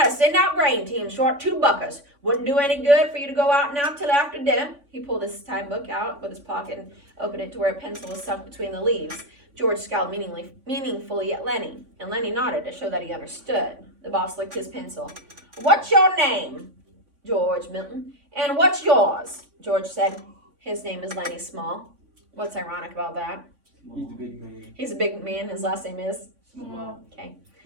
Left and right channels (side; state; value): left; late; 3.5 ms